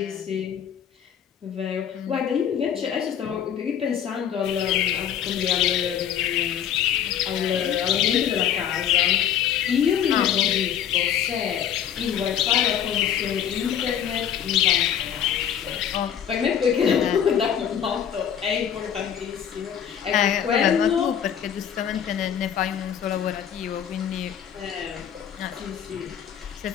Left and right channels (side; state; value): right; quieter; 9.1 dB